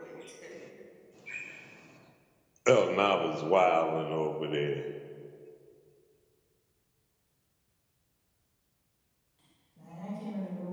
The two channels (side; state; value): both; identical; correlation 1.00